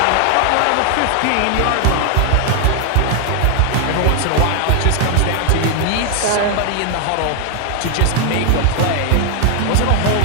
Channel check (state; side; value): different; both; correlation 0.00